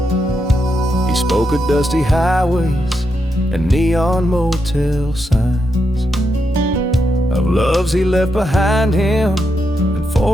He spoke of dusty highways and neon motel signs, of loves he left behind him and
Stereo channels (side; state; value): both; normal; correlation 0.83